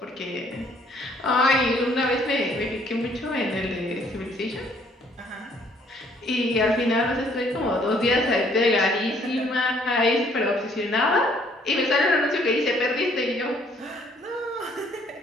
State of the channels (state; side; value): normal; both; correlation 0.63